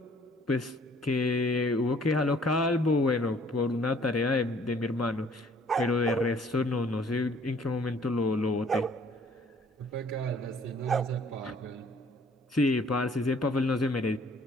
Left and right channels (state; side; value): normal; both; correlation 0.58